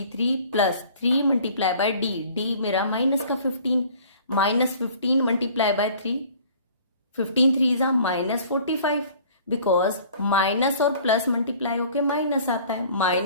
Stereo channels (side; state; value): both; inverted; correlation -0.51